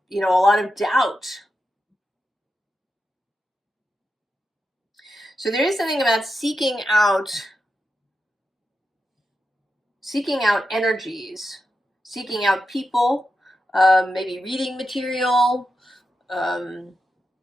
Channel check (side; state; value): both; normal; correlation 0.88